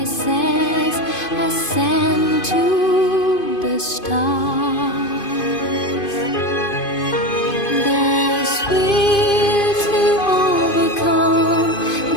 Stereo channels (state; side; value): late; right; 2.5 ms